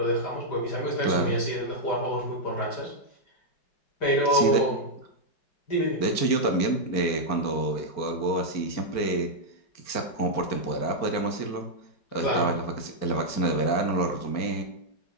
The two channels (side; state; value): right; late; 4.4 ms